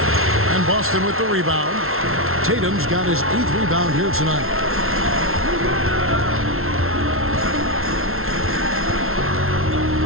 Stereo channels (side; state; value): left; late; 0.62 ms